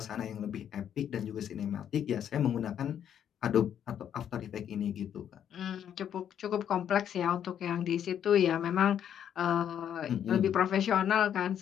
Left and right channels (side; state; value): right; quieter; 9.4 dB